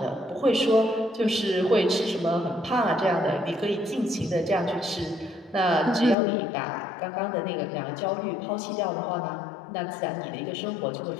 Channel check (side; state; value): right; drops out; at 6.2 s